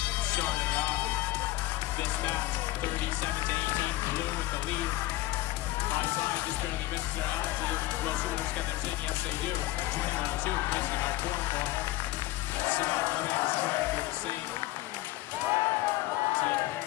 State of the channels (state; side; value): quieter; right; 17.3 dB